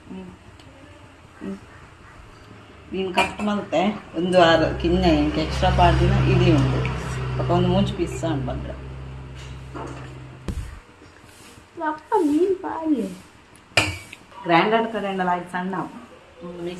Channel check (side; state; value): both; identical; correlation 1.00